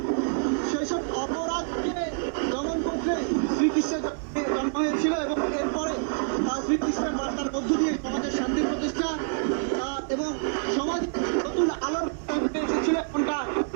সেই সব অপরাধকে দমন করতে শ্রীকৃষ্ণের জন্ম হয়েছিল এবং এরপরে শ্রীকৃষ্ণের বার্তার মধ্য দিয়ে সমাজের শান্তির প্রতিষ্ঠা এবং সমাজে নতুন আলোর বার্তা এসেছিল এমনটা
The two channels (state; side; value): silent; left; 60 dB below the other